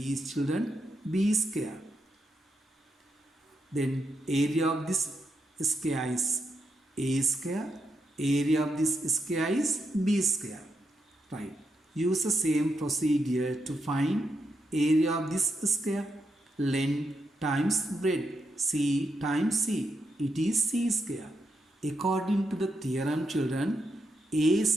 is, children, B square. Then area of this square is A square. Area of this square is B square. Right. Use the same procedure to find area of this square. Length times breadth. C times C. It is C square. According to the theorem, children, A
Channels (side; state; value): both; normal; correlation 0.82